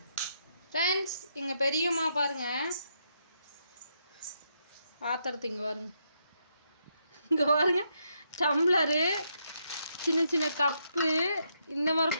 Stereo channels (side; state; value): both; inverted; correlation -0.78